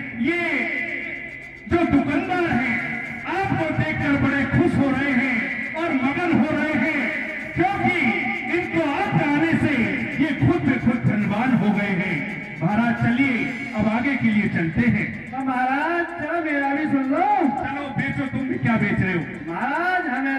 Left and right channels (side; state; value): both; identical; correlation 1.00